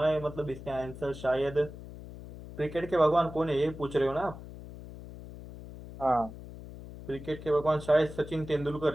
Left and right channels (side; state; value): left; noise; hum, 14 dB below the sound